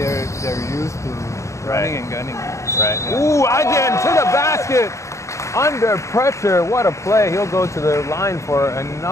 used to running and gunning. Right. Yeah. Ooh, Ajin to the basket. Under pressure, what a play. He'll go to the line for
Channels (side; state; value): right; late; 0.14 ms